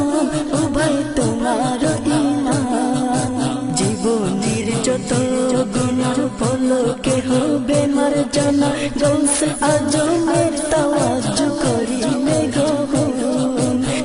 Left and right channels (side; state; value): both; identical; correlation 1.00